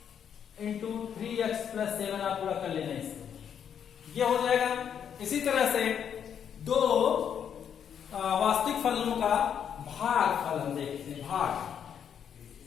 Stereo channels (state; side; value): quieter; right; 8.3 dB